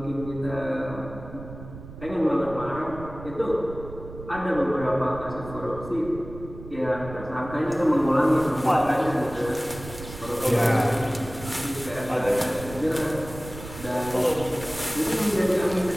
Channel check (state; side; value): noise; right; rumble, 13 dB below the sound